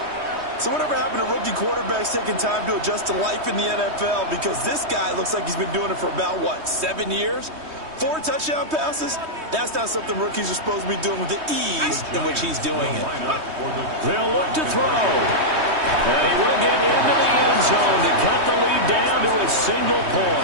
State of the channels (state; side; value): late; left; 3.2 ms